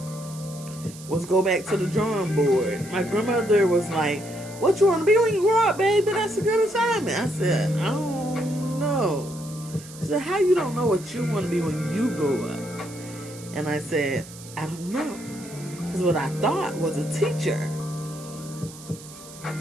was go back to the drawing board. My grandmother was like, what you want to be when you grow up, baby? That's a good assignment. I said, I don't know. She said, how you don't know what you want to be when you grow up? And I said, I don't know. Because what I thought was a teacher.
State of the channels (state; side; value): noise; right; hiss, 17 dB below the sound